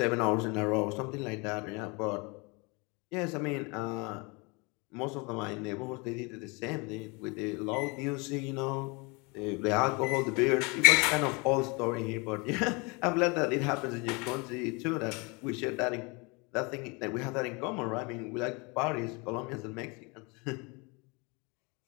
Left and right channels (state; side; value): quieter; right; 28.9 dB